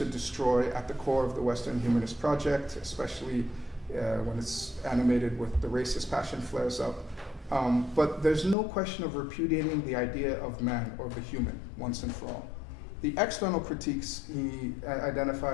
destroy at the core of the Western humanist project, especially when it's animated with the racist passion flares up. But there's no question of repudiating the idea of man or the human once and for all. The external critiques he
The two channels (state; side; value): drops out; right; at 8.6 s